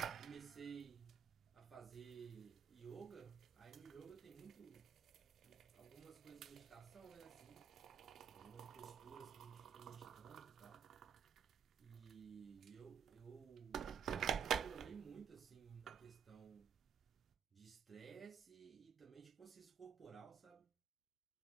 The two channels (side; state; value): left; quieter; 7.9 dB